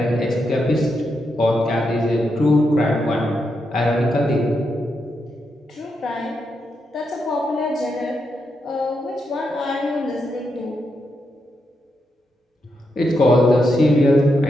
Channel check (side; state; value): both; normal; correlation 0.83